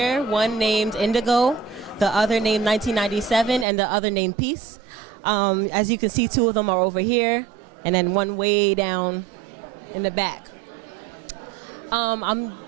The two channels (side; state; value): left; drops out; at 3.7 s